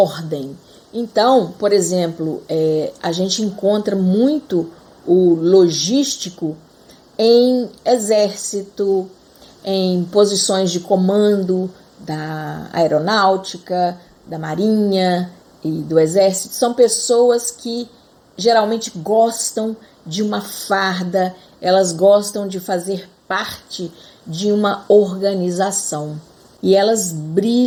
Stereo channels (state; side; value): identical; both; correlation 1.00